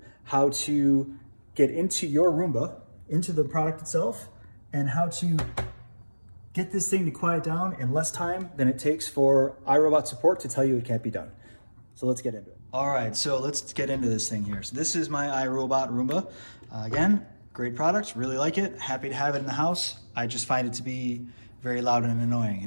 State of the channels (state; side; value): inverted; both; correlation -1.00